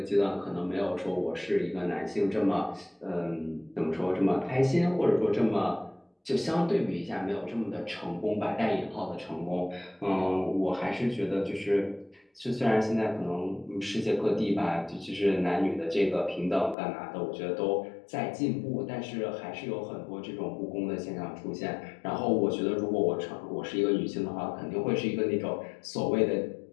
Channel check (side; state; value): right; drops out; at 16.8 s